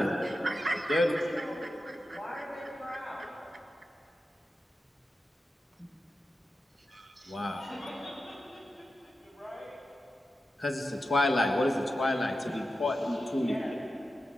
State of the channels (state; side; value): normal; both; correlation 0.91